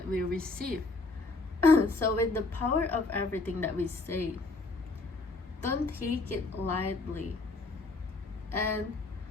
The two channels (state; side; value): quieter; right; 3.4 dB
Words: we receive. So with the power of everything that we say, don't take it lightly. And